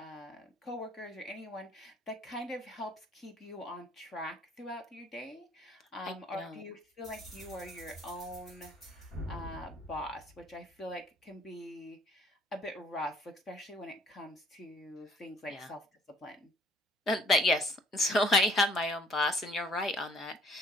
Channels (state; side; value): normal; both; correlation 0.60